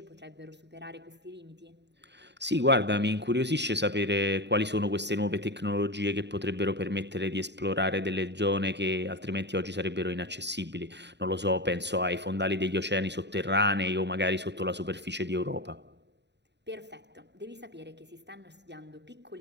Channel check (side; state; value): left; late; 0.50 ms